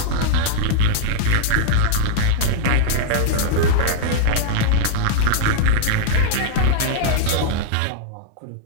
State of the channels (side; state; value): both; different; correlation -0.01